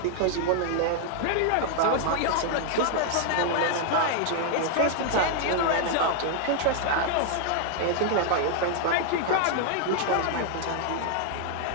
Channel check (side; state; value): both; different; correlation 0.00